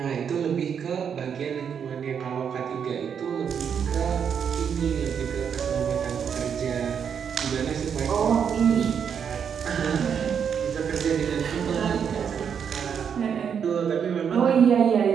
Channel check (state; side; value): quieter; left; 7.5 dB